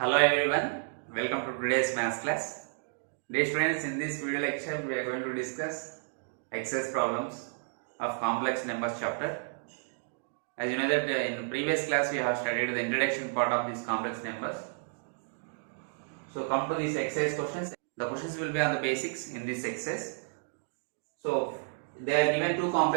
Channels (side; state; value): left; silent; digital silence